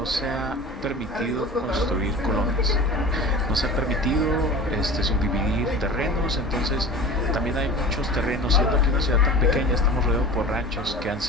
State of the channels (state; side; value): normal; both; correlation 0.37